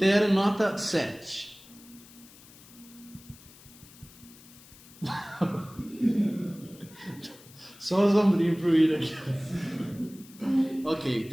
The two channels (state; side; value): noise; left; hiss, 22 dB below the sound